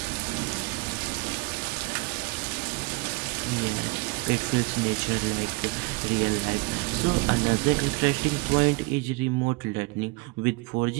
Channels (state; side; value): quieter; left; 26.0 dB